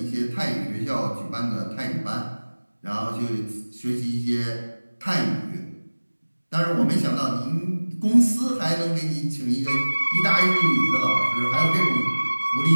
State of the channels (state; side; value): inverted; both; correlation -1.00